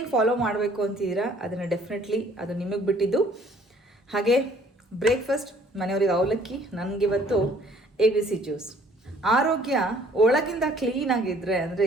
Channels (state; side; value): normal; both; correlation 0.58